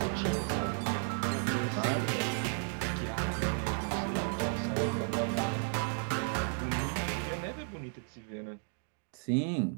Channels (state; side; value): silent; left; 55 dB below the other